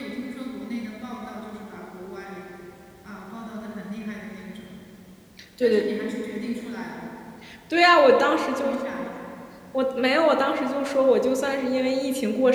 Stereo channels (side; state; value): both; identical; correlation 1.00